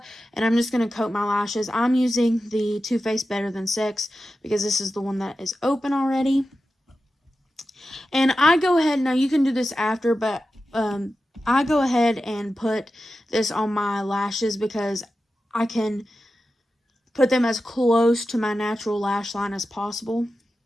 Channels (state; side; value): normal; both; correlation 0.92